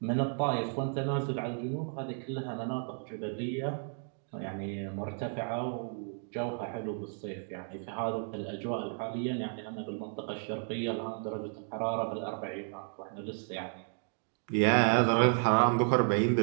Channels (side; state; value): left; silent; 56 dB below the other